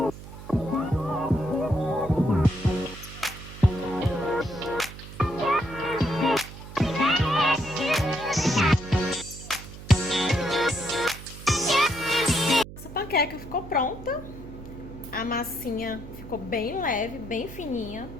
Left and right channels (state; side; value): noise; right; hum, 14 dB below the sound